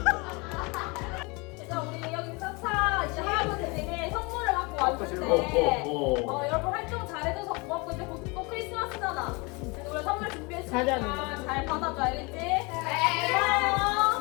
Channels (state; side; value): quieter; right; 28.0 dB